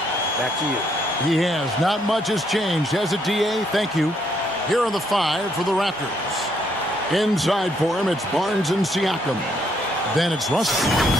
Back to you. He has. Not much has changed, has it, DA? Thank you. Here are the five for the Raptors. Inside for him, it's Barnes and Siakam. Then it's Russell,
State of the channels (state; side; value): normal; both; correlation 0.72